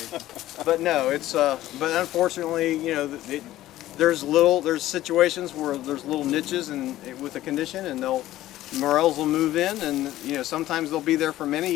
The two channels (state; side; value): quieter; right; 14.7 dB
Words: But no, it's but unfortunately, there's situations where there's little niches with the condition, and morels will move in, and sometimes they'll be there for many